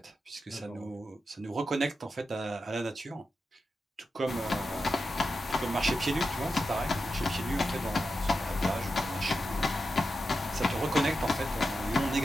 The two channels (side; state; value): both; normal; correlation 0.89